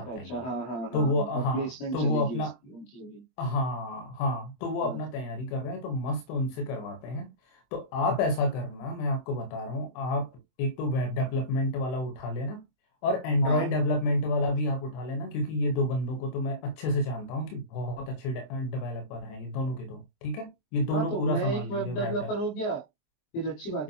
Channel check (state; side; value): late; right; 24 ms